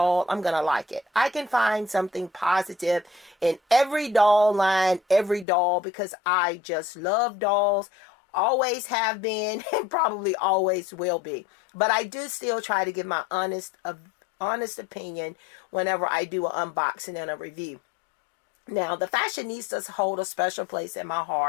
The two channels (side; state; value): right; drops out; at 5.5 s